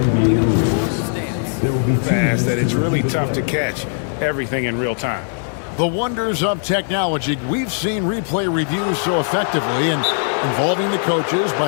fast, that it's really tough to catch everything in real time. The wonders of technology. We've seen replay reviews so effectively, and involving the coaches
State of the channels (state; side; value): silent; right; digital silence